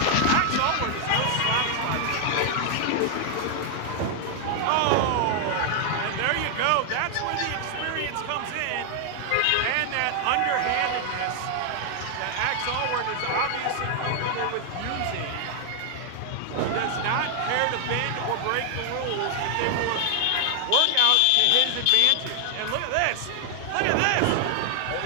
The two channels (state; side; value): different; both; correlation 0.00